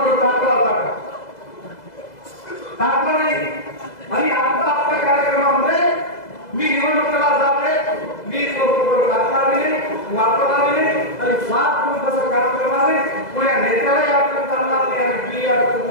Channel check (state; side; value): late; right; 2.0 ms